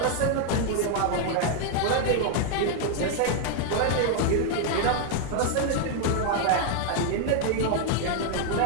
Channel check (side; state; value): both; different; correlation 0.00